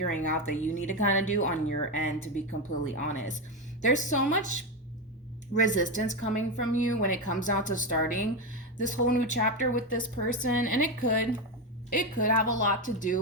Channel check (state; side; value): normal; both; correlation 0.12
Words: out that you need to kind of do on your end, to be completely honest. There's so much resistance coming from you when it comes down to starting this whole new chapter with this person, and it could have a lot to